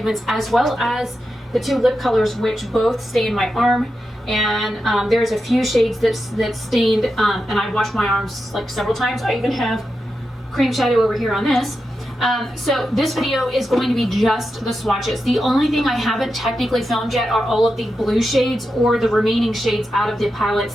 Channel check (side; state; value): both; normal; correlation 0.89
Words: as well as the two lip colors, which both stain my arm. And there's a few shades that stained, and I washed my arms like several times. I even have cream shadow over here on this. So this video is going to be just the swatches. The only thing I haven't technically filmed yet are all of the blue shades or the remaining shades out of the